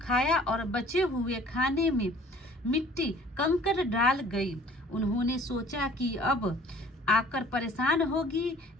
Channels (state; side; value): normal; both; correlation 0.52